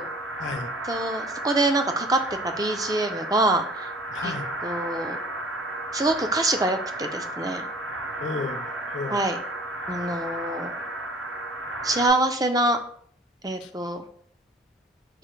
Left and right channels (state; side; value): normal; both; correlation 0.48